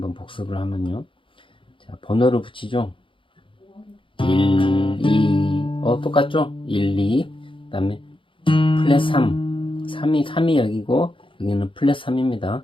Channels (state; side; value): late; right; 0.25 ms